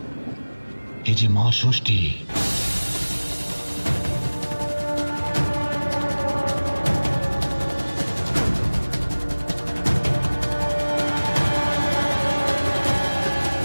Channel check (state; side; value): inverted; both; correlation -1.00